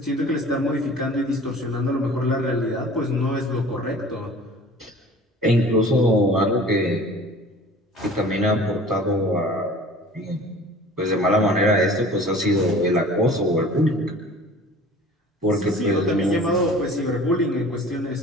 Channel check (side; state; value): both; normal; correlation 0.45